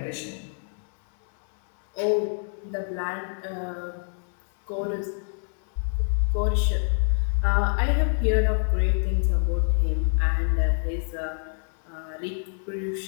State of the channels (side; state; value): right; silent; digital silence